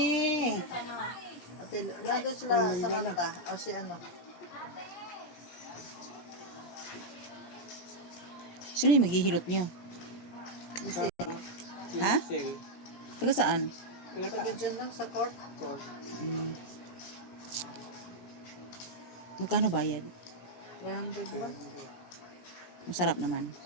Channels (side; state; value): right; late; 17 ms